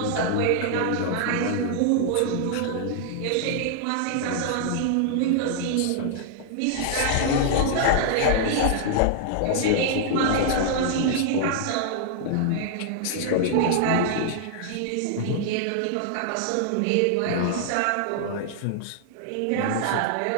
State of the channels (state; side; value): different; both; correlation 0.00